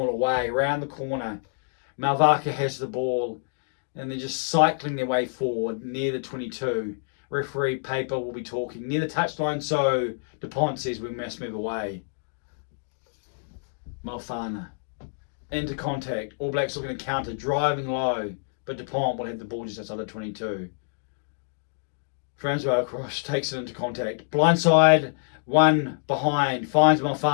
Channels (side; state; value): right; silent; digital silence